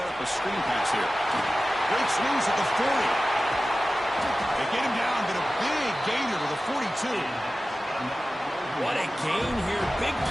up a screen pass here. Breaks loose at the 40. They get him down, but a big gainer to the 42. What a gain here. Big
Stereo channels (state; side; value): normal; both; correlation 0.95